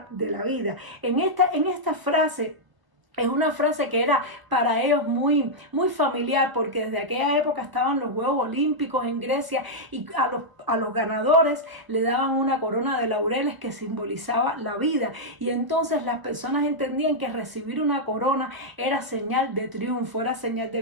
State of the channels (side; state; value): left; late; 1.2 ms